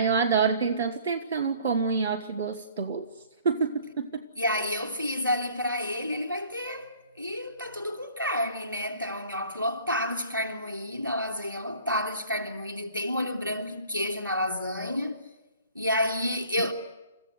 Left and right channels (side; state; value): both; inverted; correlation -0.53